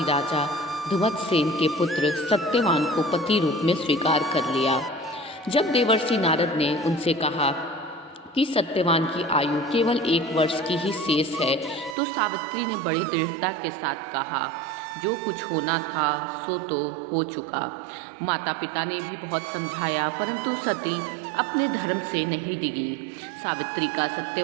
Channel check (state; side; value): drops out; left; at 12.0 s